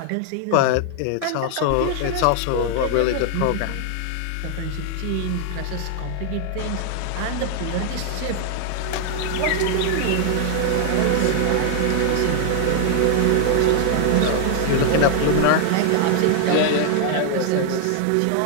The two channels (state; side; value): different; both; correlation 0.00